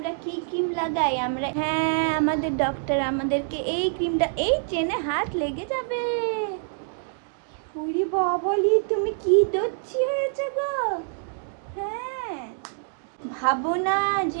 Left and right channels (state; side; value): silent; left; digital silence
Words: কি ক্রিম লাগাই। আমরা হ্যাঁ, আমাদের ডক্টর আমাদেরকে এই ক্রিমটা, এই চেনে হাত লেগে যাবে। উরি বাবলি, তুমি কি দচ্ছি হয়েছে গো। হ্যাঁ, ভাবো না